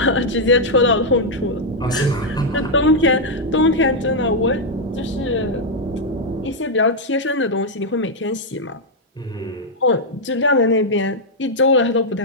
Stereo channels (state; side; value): normal; both; correlation -0.02